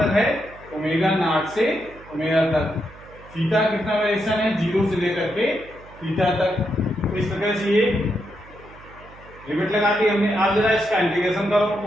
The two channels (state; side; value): noise; right; hum, 21 dB below the sound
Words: है, ओमेगा नॉट से ओमेगा तक। थीटा कितना वेरिएशन है, 0 से लेकर के थीटा तक। तो इस तरह से ये लिमिट लगा दी हमने। आप जरा इसका इंटीग्रेशन करो